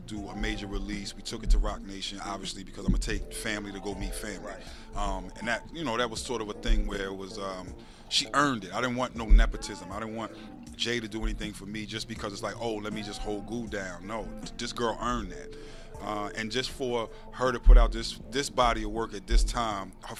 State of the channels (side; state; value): both; identical; correlation 1.00